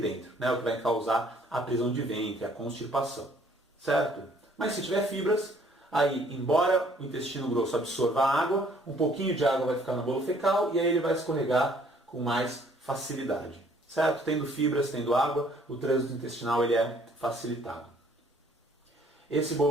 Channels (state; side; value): normal; both; correlation 0.61